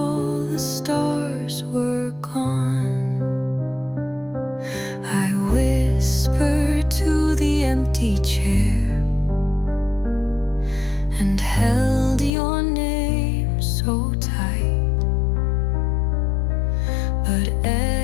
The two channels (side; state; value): right; drops out; at 12.3 s